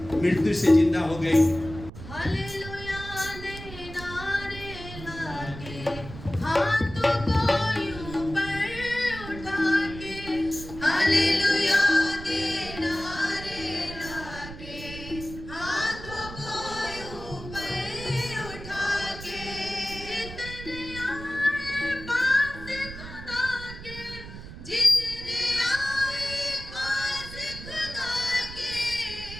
मृत्यु से जिंदा हो गई।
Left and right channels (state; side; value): noise; right; rumble, 12 dB below the sound